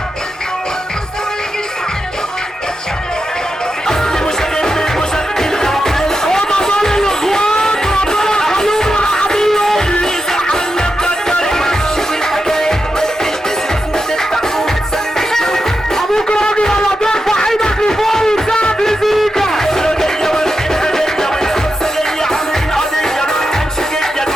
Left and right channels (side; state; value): both; normal; correlation 0.88